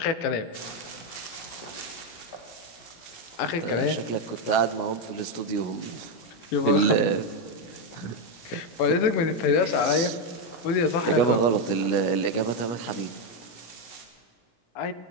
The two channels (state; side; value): late; right; 17 ms